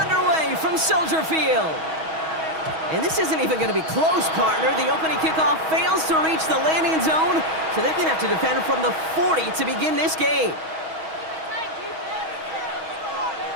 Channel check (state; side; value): late; left; 6.3 ms